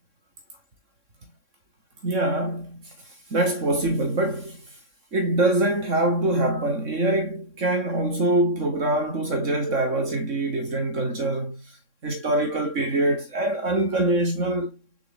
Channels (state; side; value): late; left; 3.6 ms